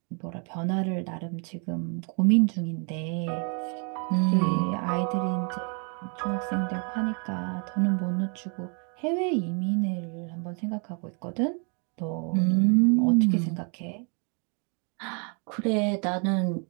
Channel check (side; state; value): left; quieter; 37.8 dB